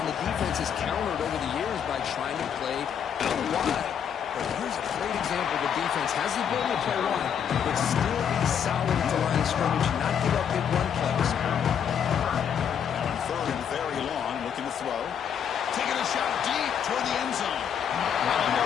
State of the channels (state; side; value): quieter; right; 8.2 dB